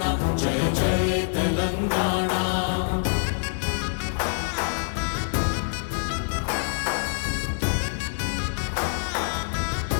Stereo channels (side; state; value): right; silent; digital silence